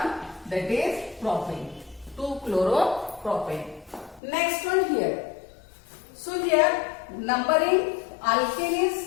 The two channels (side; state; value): right; drops out; at 4.2 s